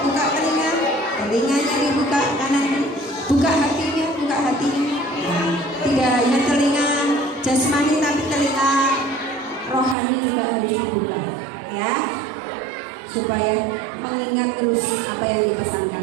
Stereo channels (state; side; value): drops out; left; at 10.0 s